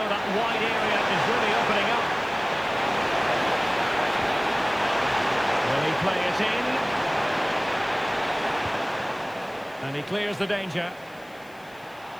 that wide area is really opening up. Will he play it in? And he clears the danger.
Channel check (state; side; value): noise; left; hiss, 28 dB below the sound